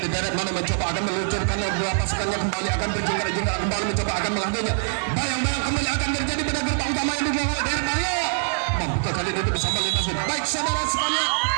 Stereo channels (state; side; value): silent; left; 63 dB below the other